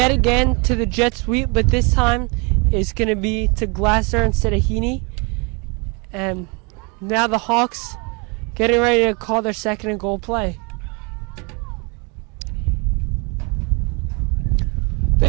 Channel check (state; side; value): quieter; left; 31.1 dB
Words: again to the jet sweep, but this time it's going to be to Glasser instead of Heaney. And Now the Hawks getting ready to call their second and goal play.